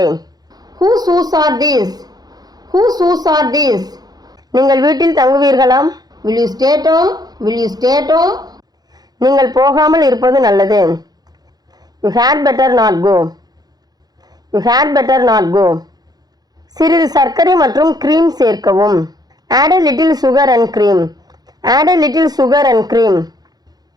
Whose shoes are these? Whose shoes are these? நீங்கள் வீட்டில் தங்குவீர்களா? Will you stay at home? Will you stay at home? நீங்கள் போகாமல் இருப்பது நல்லது. You had better not go. You had better not go. சிறிது சர்க்கரை மற்றும் cream சேர்க்கவும். Add a little sugar and cream. Add a little sugar and cream.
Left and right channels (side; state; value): left; late; 0.19 ms